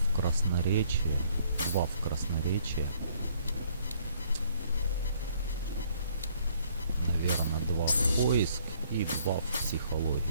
красноречие, 2 в красноречие. Наверное, 2 в поиск и 2 в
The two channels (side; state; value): both; inverted; correlation -0.63